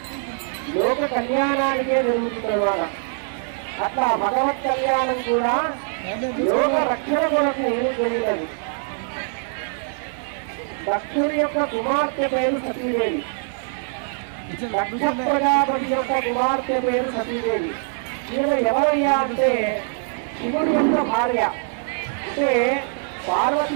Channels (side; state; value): left; silent; 63 dB below the other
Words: లోక కళ్యాణానికే జరుగుతుంది అన్నమాట. అట్లా భగవత్ కళ్యాణం కూడా లోక రక్షణ కొరకు జరిగినది. దక్షుడి యొక్క కుమార్తె పేరు సతీదేవి. దక్ష ప్రజాపతి యొక్క కుమార్తె పేరు సతీదేవి. ఈమె ఎవరయ్యా అంటే శివుడి యొక్క భార్య. అంటే